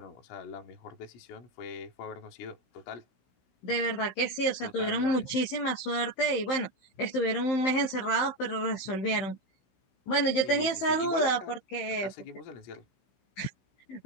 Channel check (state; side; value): late; right; 15 ms